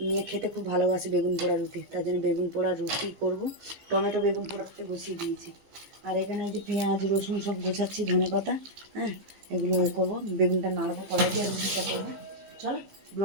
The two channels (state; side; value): late; left; 15 ms